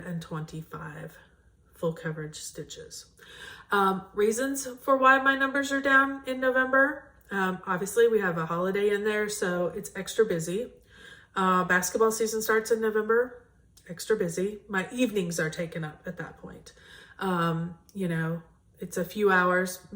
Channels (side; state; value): both; identical; correlation 1.00